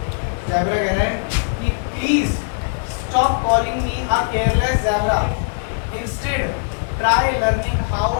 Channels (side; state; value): right; silent; 55 dB below the other